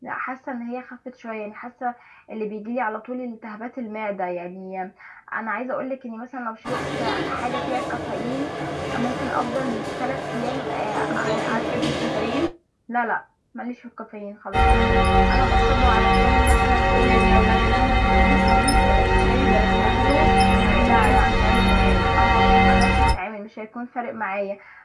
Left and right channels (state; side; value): identical; both; correlation 1.00